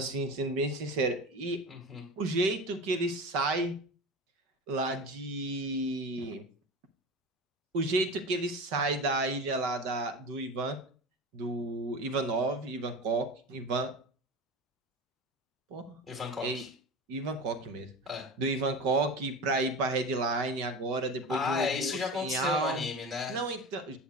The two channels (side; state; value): both; normal; correlation 0.29